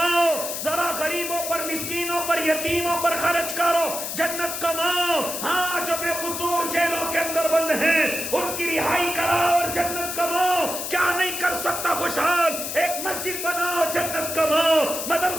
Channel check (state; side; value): noise; left; hiss, 5 dB below the sound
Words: ذرا غریبوں پر مسکینوں پر یتیموں پر خرچ کرو جنت کماؤ. ہاں جو بے قصور جیلوں کے اندر بند ہیں ان کی رہائی کراؤ اور جنت کماؤ. کیا نہیں کر سکتا خوشحال؟ ایک مسجد بناؤ جنت کماؤ،